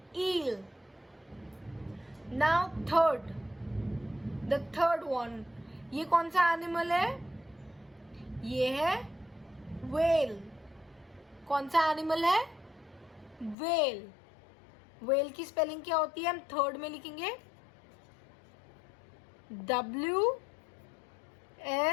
Eel. Now the third one, ये कौन सा animal है? ये है whale. कौन सा एनिमल है? whale. whale की स्पेलिंग क्या होती है? हम थर्ड में लिखेंगे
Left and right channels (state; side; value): drops out; right; at 13.6 s